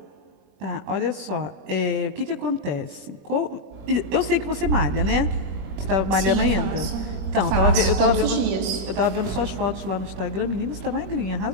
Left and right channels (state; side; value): late; left; 21 ms